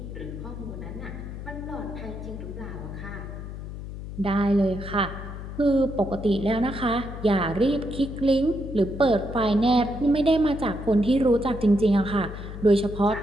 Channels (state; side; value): noise; left; hum, 9 dB below the sound